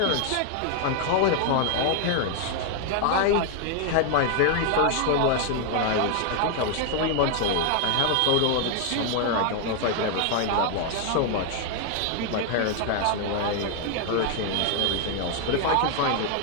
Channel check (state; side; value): different; both; correlation 0.00